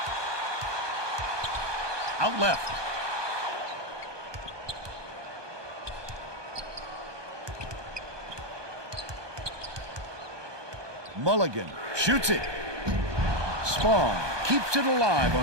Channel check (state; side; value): late; left; 1.2 ms